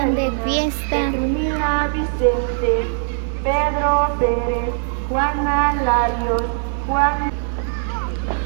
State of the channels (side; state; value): left; silent; digital silence